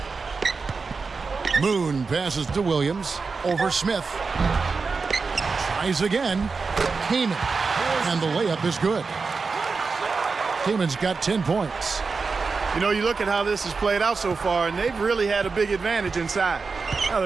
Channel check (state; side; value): quieter; left; 4.6 dB